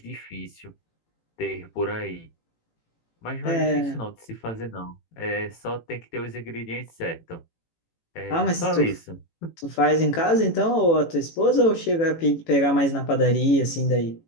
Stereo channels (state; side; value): late; right; 18 ms